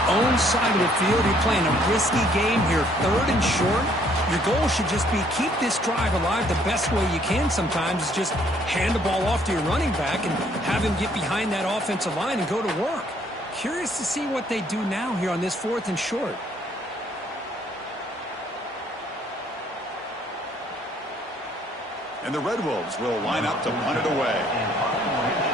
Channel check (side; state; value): both; normal; correlation 0.64